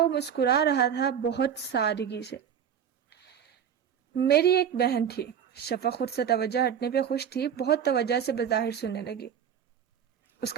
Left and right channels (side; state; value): left; quieter; 8.4 dB